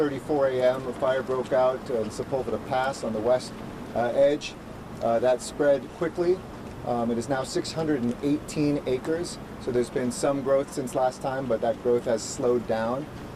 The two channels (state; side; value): identical; both; correlation 1.00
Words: a.m. a fire broke out in Sepulveda Pass on the west edge. That spread quickly. It is now 618 acres, so there's been some growth since last time, but that growth has slowed down,